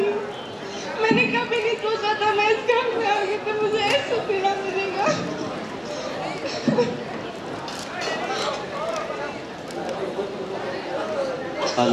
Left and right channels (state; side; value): identical; both; correlation 1.00